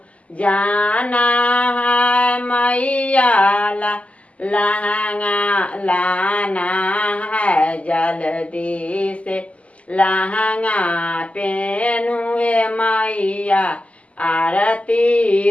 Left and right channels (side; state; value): right; late; 0.066 ms